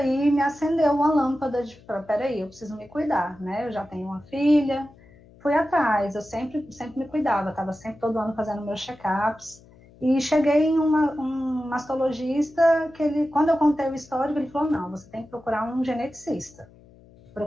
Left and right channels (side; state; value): left; noise; hum, 25 dB below the sound